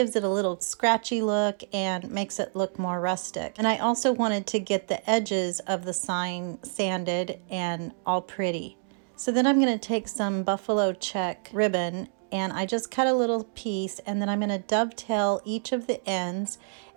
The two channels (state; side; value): silent; left; digital silence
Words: it a little scratchy look and makes it look more rustic. And I also wanted to get the edges of the sign sanded and all pretty. So then I'm going to take some buffalo check ribbon, and I just cut a little piece, and then I'm going to dovetail each of the ends,